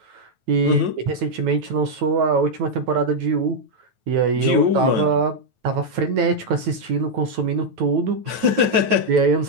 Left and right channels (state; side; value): late; left; 9.2 ms